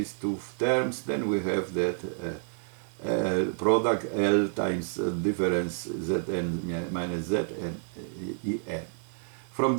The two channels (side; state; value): left; silent; digital silence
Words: two terms, then we have that product L times difference Zn minus Zn En. From